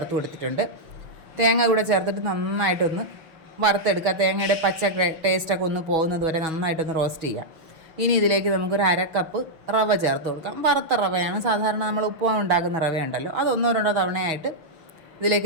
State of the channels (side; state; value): left; late; 6.4 ms